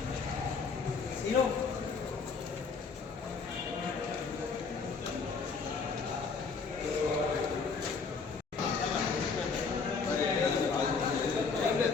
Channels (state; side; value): quieter; right; 5.0 dB